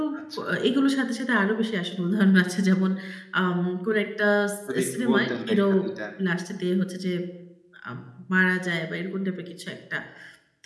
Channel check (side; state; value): both; identical; correlation 1.00